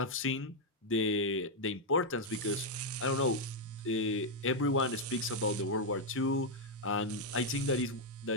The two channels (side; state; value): both; normal; correlation 0.00